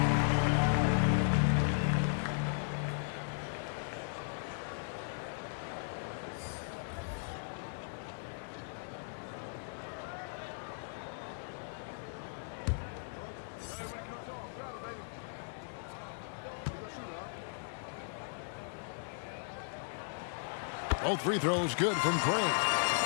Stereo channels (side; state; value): right; silent; digital silence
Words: Both free throws good from Craig.